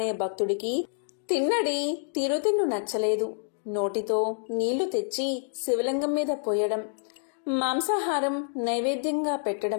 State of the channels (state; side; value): silent; right; digital silence